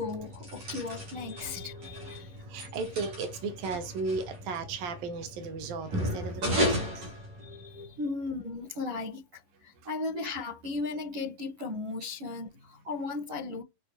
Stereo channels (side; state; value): left; late; 11 ms